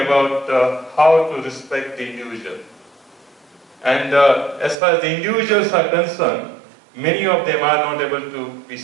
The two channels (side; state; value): left; drops out; at 4.8 s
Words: how to respect the individual. And as far as the individuals are concerned, many of them are not able to be